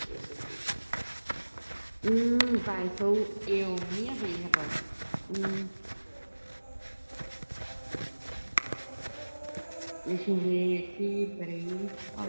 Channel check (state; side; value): inverted; both; correlation -1.00